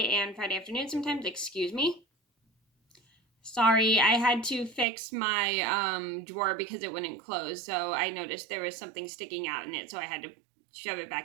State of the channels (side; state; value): left; drops out; at 4.9 s